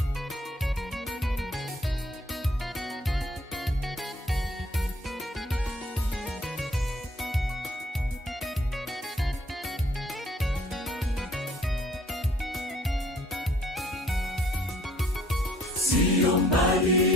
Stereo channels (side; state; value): both; normal; correlation 0.60